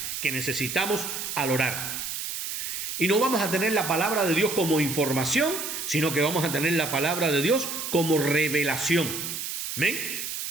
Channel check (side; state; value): right; noise; hiss, 5 dB below the sound